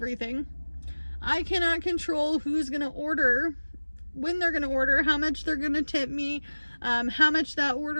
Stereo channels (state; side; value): inverted; both; correlation -1.00